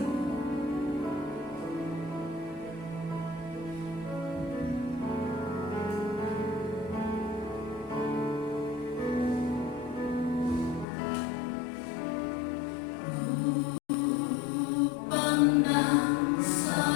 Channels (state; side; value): drops out; right; at 10.9 s